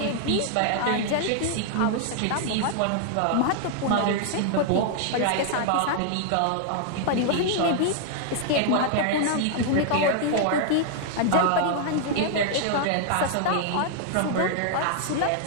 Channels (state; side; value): different; both; correlation 0.00